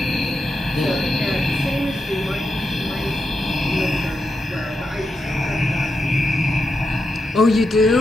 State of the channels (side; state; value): both; normal; correlation 0.86